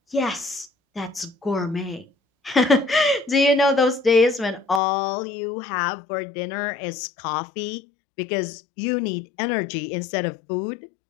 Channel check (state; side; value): drops out; right; at 4.8 s